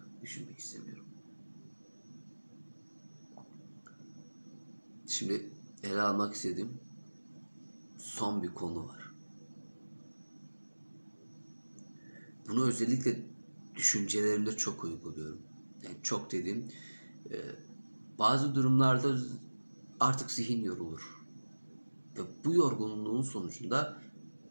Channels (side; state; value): both; inverted; correlation -1.00